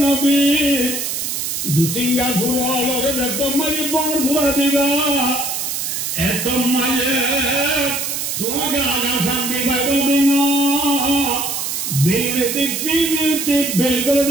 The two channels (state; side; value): noise; right; hiss, 3 dB below the sound